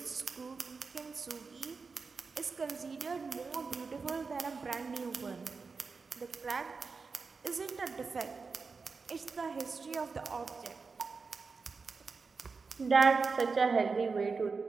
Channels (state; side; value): quieter; left; 4.7 dB